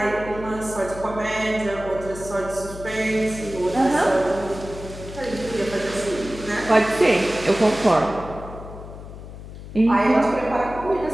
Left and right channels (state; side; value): noise; left; hum, 13 dB below the sound